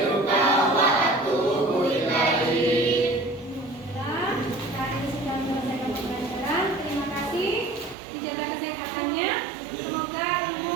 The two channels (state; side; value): drops out; left; at 8.0 s